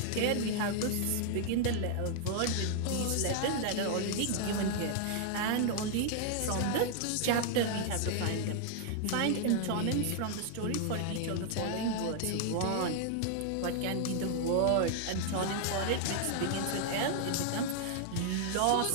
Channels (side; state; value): both; different; correlation 0.00